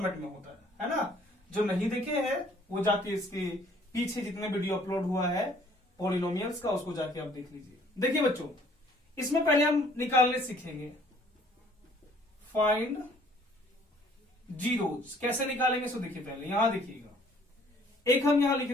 में होता है ना। जो नहीं देखे हैं वो जाके इसके पीछे जितने वीडियो अपलोड हुआ है पॉलिनोमियल्स का, उसको जाके आप देख लीजिए। देखिए बच्चों, इसमें पहले हम निकालने सीखेंगे फाइंड जीरोज। कैसे निकालेंगे सो देखिए, पहले यहां देखिएगा, एक हम यहां लिख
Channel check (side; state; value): both; normal; correlation 0.59